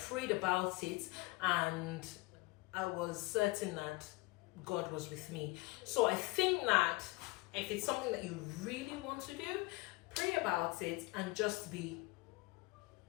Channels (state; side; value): quieter; right; 23.5 dB